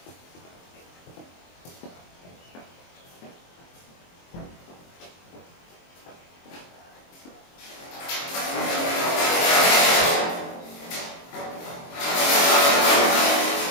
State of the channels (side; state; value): right; late; 23 ms